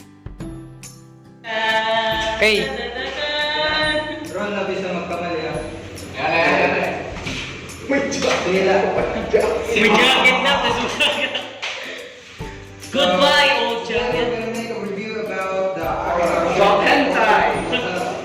Hey. Ron, nabis na magkamali ah. Yan. May jacket na. May jacket na. Goodbye, old jacket. We're gonna make a review about the hentai.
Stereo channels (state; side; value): identical; both; correlation 1.00